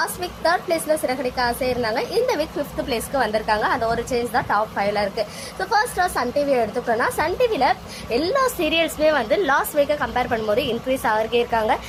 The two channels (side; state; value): both; identical; correlation 1.00